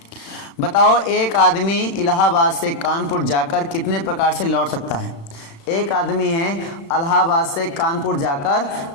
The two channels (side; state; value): right; late; 35 ms